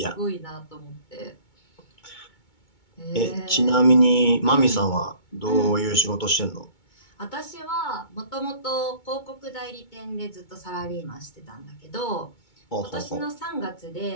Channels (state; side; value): late; right; 2.2 ms